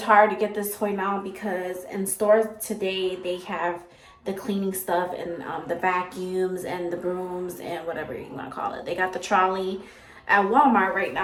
hard to get this toy now, because in stores today they have the cleaning stuff and the vacuums and the brooms and whatever you want to call it. They got the trolley at Walmart right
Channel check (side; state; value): both; identical; correlation 1.00